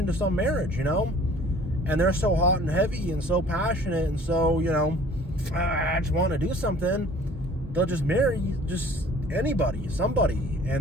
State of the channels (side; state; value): both; normal; correlation 0.51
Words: some marriage, you know? And they're so hot and heavy and so passionate and so, you know, I just want to do something. They'll just marry just anybody, somebody.